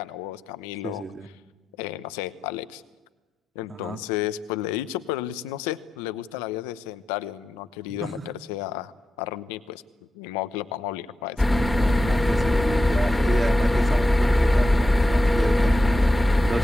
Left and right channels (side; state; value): both; normal; correlation 0.89